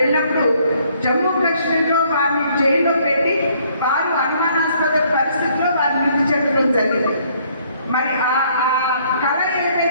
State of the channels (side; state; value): both; inverted; correlation -0.64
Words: జమ్మూ కాశ్మీర్లో వారిని జైల్లో పెట్టి వారు అనుమానాస్పద పరిస్థితుల్లో వారు మృతి చెందడం జరిగింది. మరి ఆ కళ